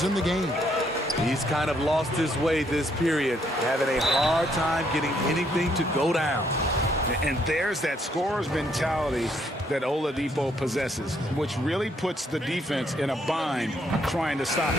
in the game. He's kind of lost his way this period, having a hard time getting anything to go down. And there's that scorer's mentality that Oladipo possesses, which really puts the defense in a bind trying to stop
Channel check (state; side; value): normal; both; correlation 0.71